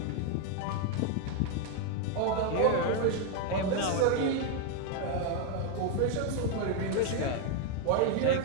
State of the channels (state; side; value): different; both; correlation 0.00